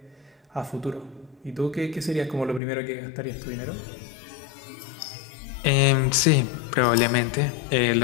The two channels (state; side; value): drops out; right; at 2.6 s